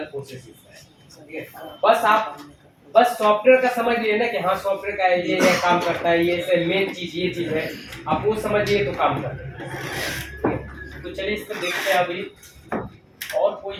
प्रोसेस है। ठीक है, बस सॉफ्टवेयर का समझ लिए ना कि हाँ सॉफ्टवेयर का ये काम करता है, ये मेन चीज ये चीज है, आप वो समझिए तो काम कर रहे हैं। तो चलिए इसको देखते हैं अभी, और कोई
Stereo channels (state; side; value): identical; both; correlation 1.00